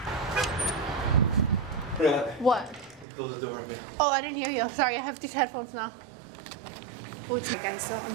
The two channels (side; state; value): left; drops out; at 3.1 s